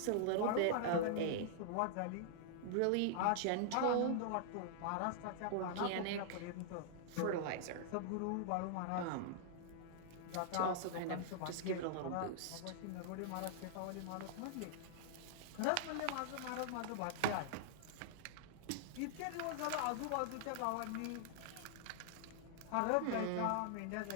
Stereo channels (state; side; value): different; both; correlation -0.01